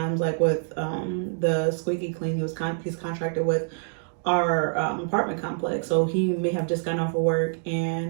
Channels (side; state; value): left; silent; digital silence